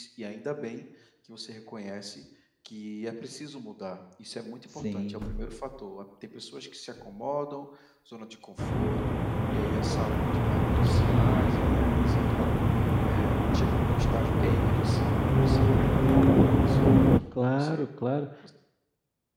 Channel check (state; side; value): identical; both; correlation 1.00